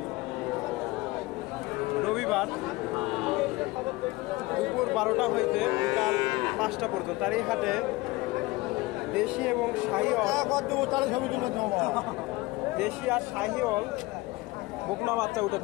রবিবার দুপুর 12টা হইতে বিকাল 5টা পর্যন্ত। আর এই হাটে দেশি এবং দেশি আর শাহিওয়াল বকনা বাচ্চা উঠে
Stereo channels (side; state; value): right; quieter; 21.2 dB